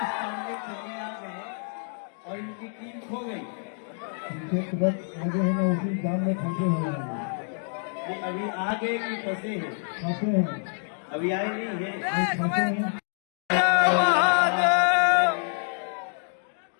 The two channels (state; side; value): silent; right; 60 dB below the other